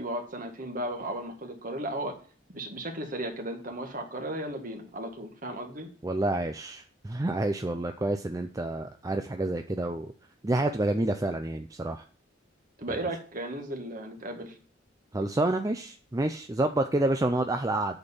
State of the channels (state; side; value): normal; both; correlation 0.63